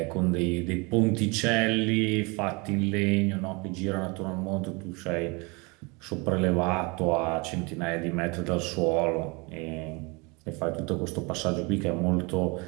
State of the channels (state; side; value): quieter; left; 28.4 dB